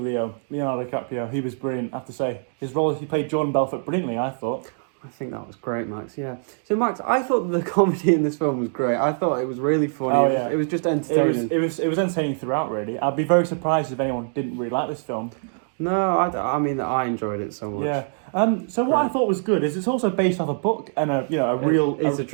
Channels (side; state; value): left; silent; digital silence